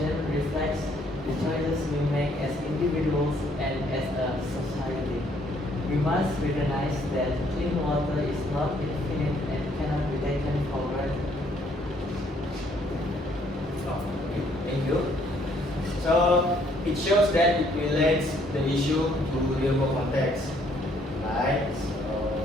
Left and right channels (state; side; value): normal; both; correlation 0.66